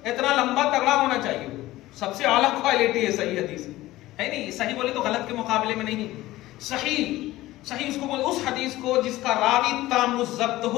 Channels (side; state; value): right; quieter; 16.9 dB